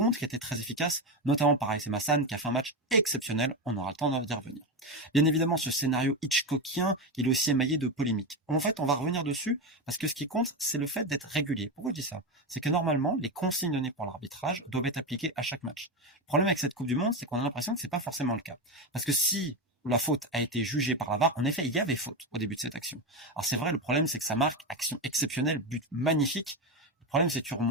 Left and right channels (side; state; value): both; normal; correlation 0.15